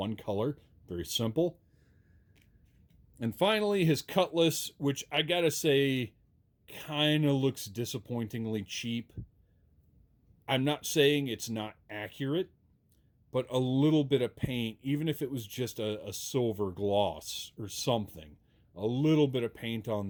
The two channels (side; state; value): both; identical; correlation 1.00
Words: color. Very simple. And finally, his cutlass, which I gotta say, kind of looks disappointingly cheap. I'm not saying it's not accurate, but a little bit of paint, even if it was just a silver gloss or something, a little bit of paint